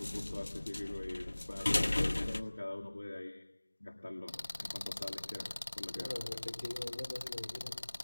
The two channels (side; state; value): both; inverted; correlation -1.00